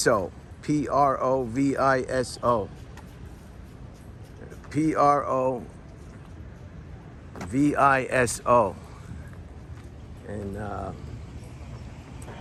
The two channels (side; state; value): both; identical; correlation 1.00